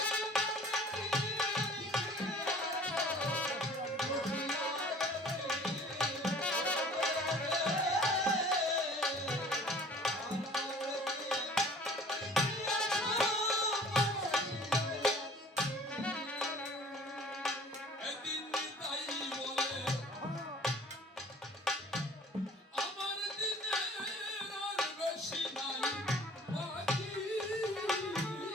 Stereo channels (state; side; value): normal; both; correlation 0.49